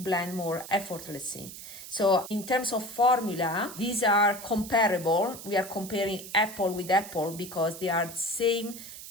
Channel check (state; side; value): noise; right; hiss, 13 dB below the sound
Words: more effortlessly. So in terms of formula, these are comparable. We are comparing apple with apple because they are the same